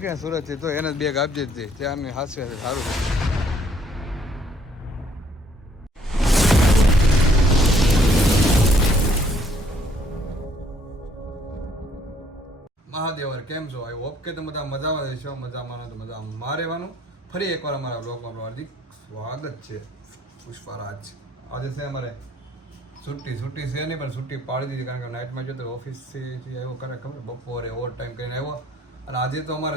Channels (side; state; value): both; normal; correlation 0.63